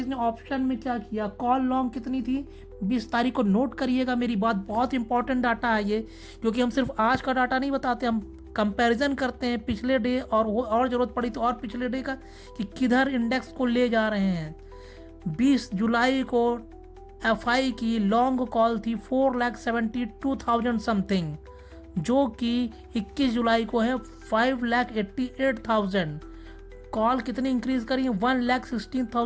ने ऑप्शन में क्या किया। कॉल लॉन्ग कितनी थी 20 तारीख को, नोट करिएगा मेरी बात। बहुत इंपॉर्टेंट डाटा है ये, क्योंकि हम सिर्फ आज का डाटा नहीं बताते, हम कंपैरिजन करते हैं पिछले डे और वो, और ज़रूरत पड़ी तो और पिछले डे का, कि किधर इंडेक्स को ले जा रहे हैं। 20 जुलाई को एफआई की लॉन्ग कॉल थी 4,72,000 समथिंग, जो कि 21 जुलाई को है 5,88,000। कॉल कितनी इंक्रीज करी है,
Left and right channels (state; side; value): identical; both; correlation 1.00